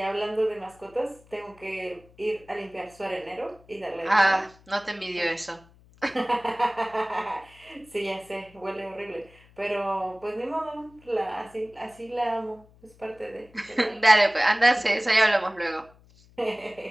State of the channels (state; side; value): noise; left; hum, 27 dB below the sound